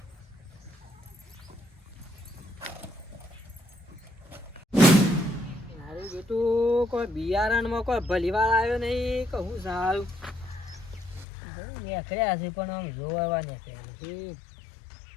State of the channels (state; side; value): drops out; right; at 11.2 s